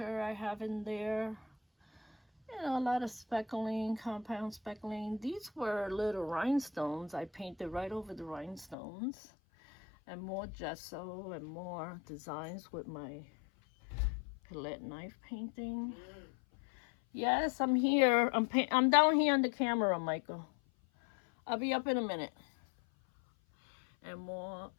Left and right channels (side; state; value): right; drops out; at 8.8 s